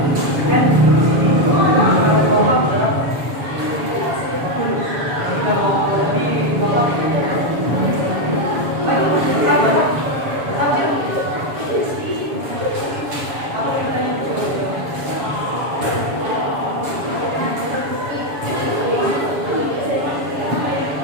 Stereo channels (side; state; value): left; late; 7.1 ms